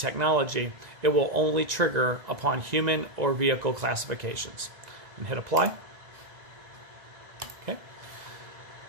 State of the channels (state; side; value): late; left; 2.0 ms